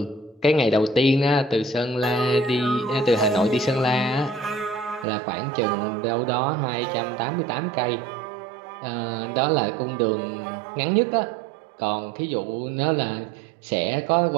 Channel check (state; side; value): drops out; left; at 5.1 s